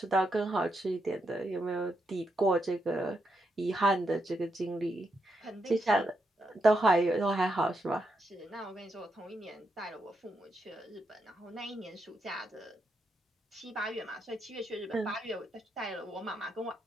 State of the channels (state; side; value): normal; both; correlation 0.82